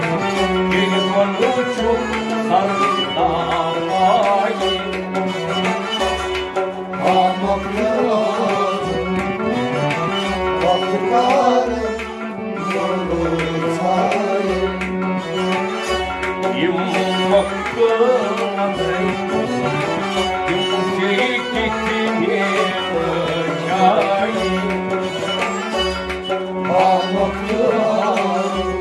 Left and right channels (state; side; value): identical; both; correlation 1.00